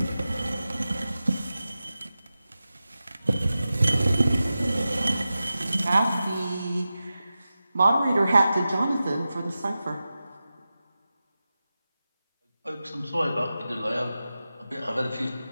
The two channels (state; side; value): inverted; both; correlation -0.94